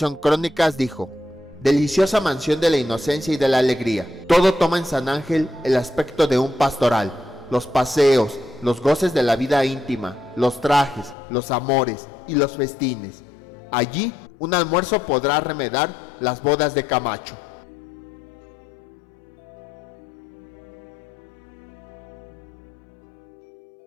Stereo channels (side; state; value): right; drops out; at 11.2 s